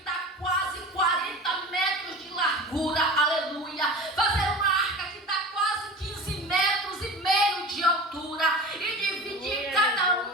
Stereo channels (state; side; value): normal; both; correlation 0.34